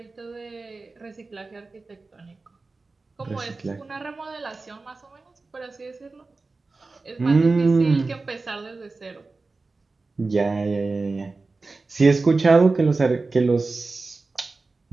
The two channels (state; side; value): quieter; left; 3.7 dB